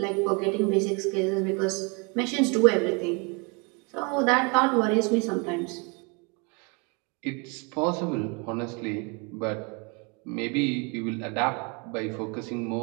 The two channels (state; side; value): quieter; left; 31.1 dB